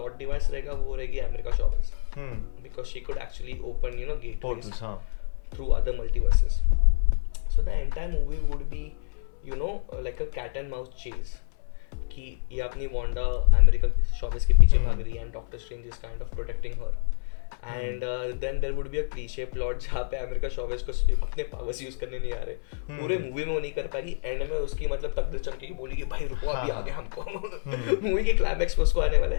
डिवाइस रहेगा वो रहेगी अमेरिका शॉवर्स, because she could actually open you know gateways portals. हाँ, through other multiverses. So the entire movie would be you know like a cat and mouse chase, कि ये अपनी वांडा अमेरिका शॉवर्स के पीछे भाग रही है and Doctor Strange is kind of protecting her. And then there would be a cliche plot जहाँ पे अमेरिका शॉवर्स को अपने पावर्स यूज करने नहीं आ रहे. पूरे मूवी में वो नहीं कर पाएगी, एंड में उसकी मतलब तकदीर चमकेगी, बोलेगी भाई रुको अभी हाँ. आ गया हमको. मूवी के क्लाइमैक्स में उसको आने वाला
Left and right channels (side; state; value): right; silent; 60 dB below the other